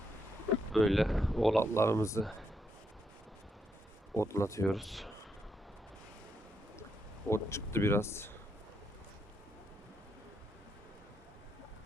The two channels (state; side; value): normal; both; correlation 0.78